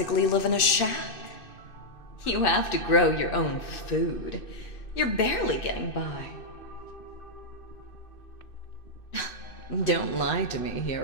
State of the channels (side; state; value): right; late; 2.6 ms